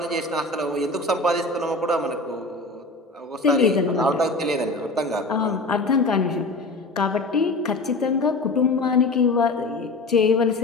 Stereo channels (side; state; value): right; quieter; 3.1 dB